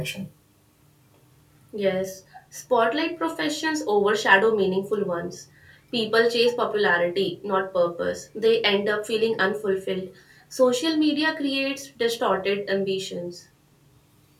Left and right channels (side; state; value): both; identical; correlation 1.00